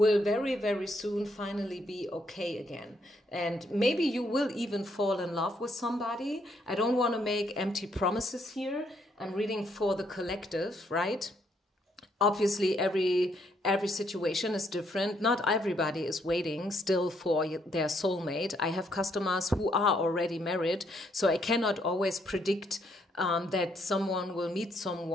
very, very soon finally be okay again. And maybe you will even fall in love with somebody. I don't want to make empty promises here. I'm reading for the collective, right? Obviously, every situation is different. Not everybody is waiting still for their soulmate. I have customers who are already married, so I cannot always predict that someone will meet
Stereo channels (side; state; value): both; normal; correlation 0.72